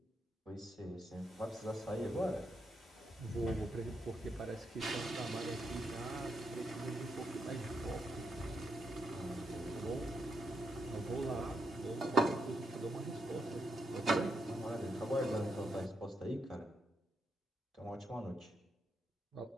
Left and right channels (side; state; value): both; normal; correlation 0.81